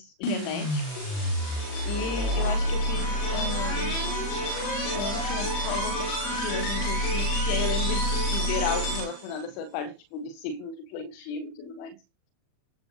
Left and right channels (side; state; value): right; late; 40 ms